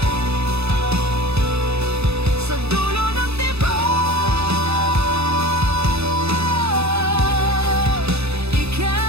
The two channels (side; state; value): left; late; 0.79 ms